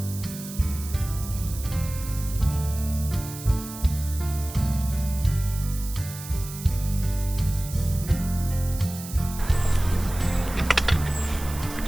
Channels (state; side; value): noise; right; hiss, 12 dB below the sound